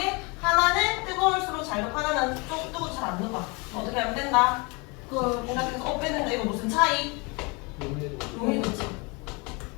하나는 뜨거울수록 잘 녹고 하나는 좀 뜨거워 잘 안 녹아. 어떻게 하면 된다? 그 생각해서 빼는다. 이거 무슨 차이? 용이도지.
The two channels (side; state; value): right; quieter; 29.2 dB